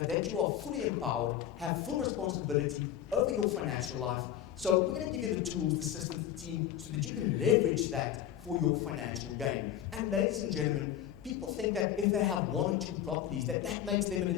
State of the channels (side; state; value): right; quieter; 10.7 dB